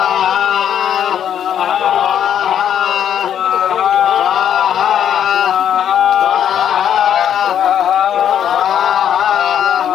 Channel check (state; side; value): quieter; right; 9.5 dB